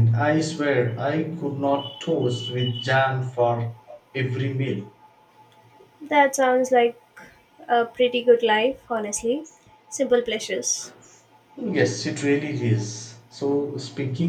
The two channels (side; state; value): both; identical; correlation 1.00